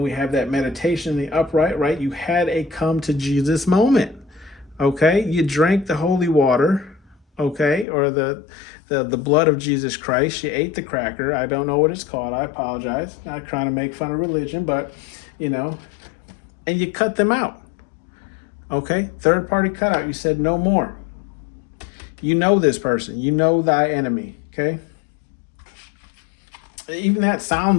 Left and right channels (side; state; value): right; drops out; at 7.9 s